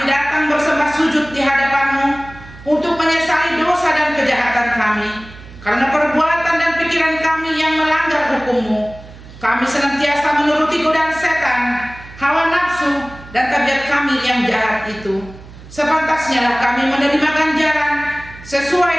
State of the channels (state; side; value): noise; right; hum, 18 dB below the sound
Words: datang bersembah sujud di hadapan-Mu untuk menyesali dosa dan kejahatan kami, karena perbuatan dan pikiran kami yang melanggar hukum-Mu. Kami senantiasa menuruti godaan setan, hawa nafsu, dan tabiat kami yang jahat itu. Sepantasnya lah kami menerima ganjaran sesuai